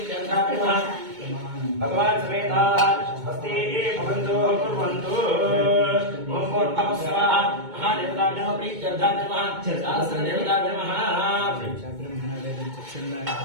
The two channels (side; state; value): left; late; 2.2 ms